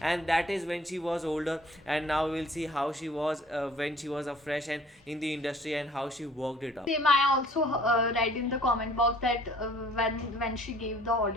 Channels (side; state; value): both; normal; correlation 0.54